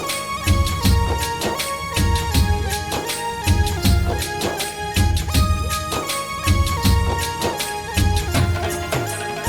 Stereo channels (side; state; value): both; identical; correlation 1.00